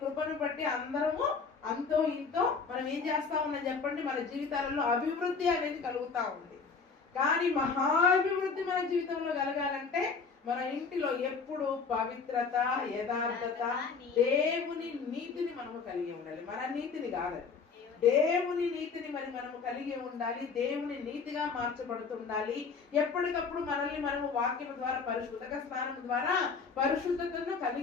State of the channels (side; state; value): right; quieter; 5.1 dB